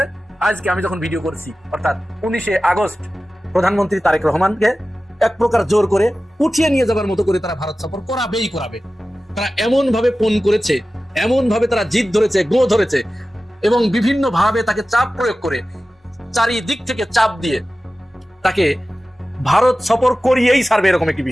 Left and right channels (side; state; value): both; normal; correlation 0.95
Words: আজকে আমি যখন ভিডিও করছি, অর্থাৎ 19শে আগস্ট প্রধানমন্ত্রী তারেক রহমানকে এক প্রকার জোর করে উঠিয়ে নিয়ে যাবার মতো করে তারা ভারত সফর করাবে। তারা এমন ভাবে ফোন করেছে, এমন ভাবে তারা জিদ ধরেছে, গো ধরেছে, এবং বিভিন্ন ভাবে তাকে চাপ প্রয়োগ করে, চারিদিক থেকে চাপ দিয়ে তাকে ভারত সফর করিয়েই ছাড়বে, এরকম একটি